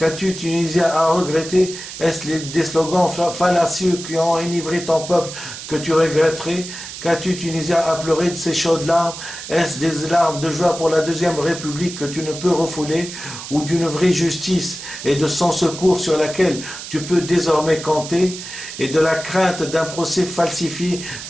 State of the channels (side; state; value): right; noise; hiss, 10 dB below the sound